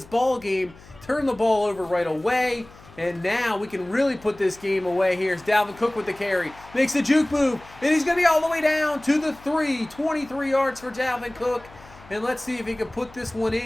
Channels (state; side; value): noise; left; hum, 23 dB below the sound